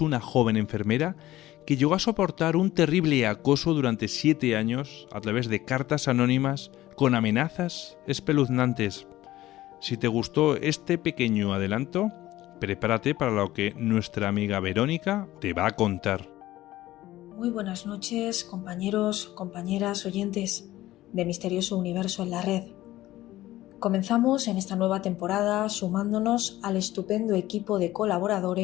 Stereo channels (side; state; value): right; quieter; 15.7 dB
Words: joven enfermera que llegó a soportar un terrible acoso durante 7 años a través de cartas anónimas con amenazas espeluznantes. Si te gustó este pequeño adelanto, prepárate para lo que nuestra amiga Verónica te va a contar. Muy buenas noches, compañeros, compañeras, oyentes de Misterioso Universo en la Red. Comenzamos en esta nueva temporada sumándonos al estupendo equipo de